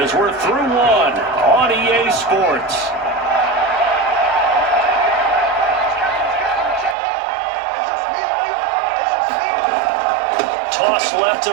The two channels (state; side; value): drops out; left; at 7.0 s